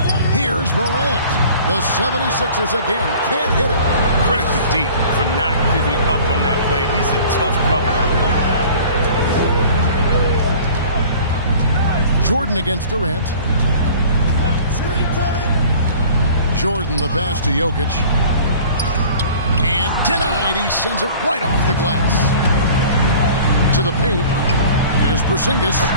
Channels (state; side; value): inverted; both; correlation -0.46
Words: Here's Morant. The 76ers again can't hit it. Credit to D for not giving up on that play. He's a tough cover. Jordan against Durant. Jordan the pass to Jokic. And denied. He sends it right off the glass. To the paint. Here's Porzingis.